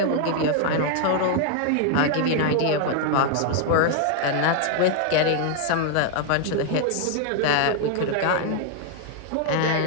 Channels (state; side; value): different; both; correlation 0.00